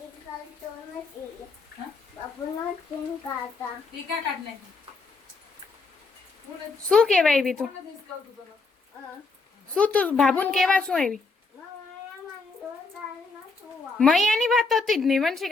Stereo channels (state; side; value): quieter; right; 4.0 dB